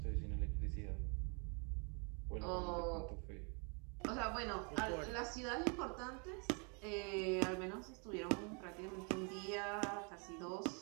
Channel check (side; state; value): left; quieter; 35.6 dB